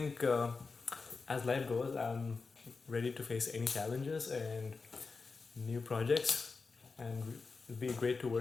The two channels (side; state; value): right; quieter; 4.4 dB